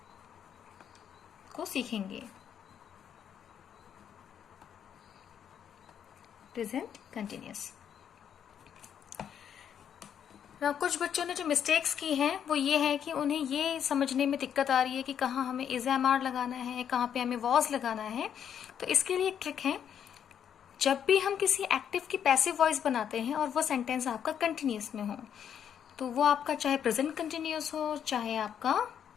को सीखेंगे। Present continuous. कुछ बच्चों ने जो मिस्टेक्स की हैं वो ये है कि उन्हें ये समझने में दिक्कत आ रही है कि कहाँ हमें इज एम आर लगाना है, कहाँ पे हमें वॉज लगाना है। तो इसके लिए एक ट्रिक है, जब भी हम किसी एक्टिव की पैसिव वॉइस बनाते हैं और वो सेंटेंस आपका कंटिन्यूअस में हो, तो वो आपका चाहे प्रेजेंट कंटिन्यूअस हो चाहे आपका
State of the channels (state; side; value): quieter; right; 8.7 dB